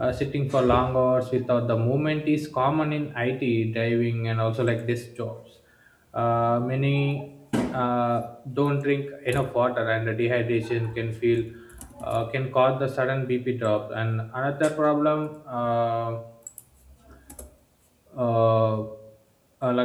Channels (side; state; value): both; identical; correlation 1.00